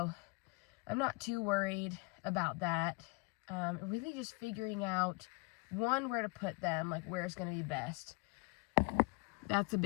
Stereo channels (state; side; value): quieter; right; 27.7 dB